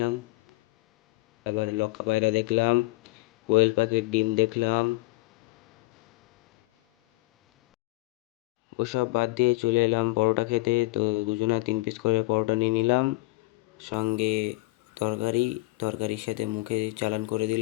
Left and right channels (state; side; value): quieter; right; 21.3 dB